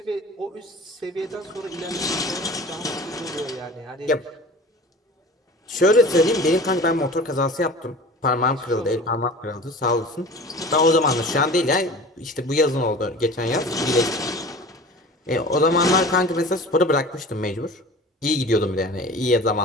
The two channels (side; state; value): both; normal; correlation 0.39